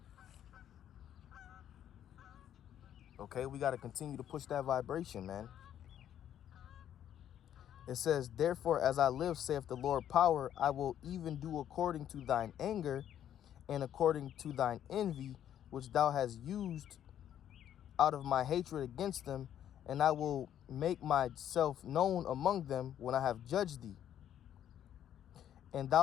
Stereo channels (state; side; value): quieter; right; 10.4 dB